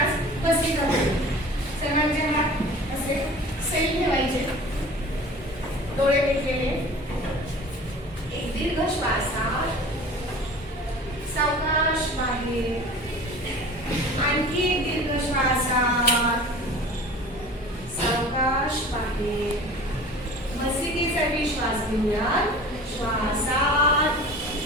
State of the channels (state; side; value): normal; both; correlation 0.41